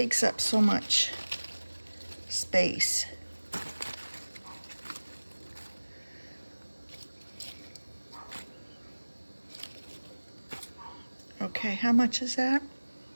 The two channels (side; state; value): both; inverted; correlation -1.00